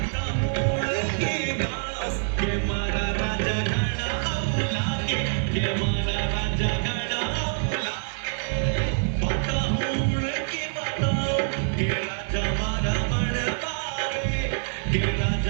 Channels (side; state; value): left; silent; digital silence